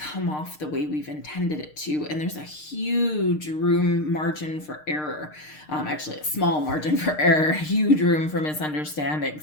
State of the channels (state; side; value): late; right; 6.6 ms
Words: off the way we've intended it to, and there's a huge margin for error. Actually, a small margin for error, huge room for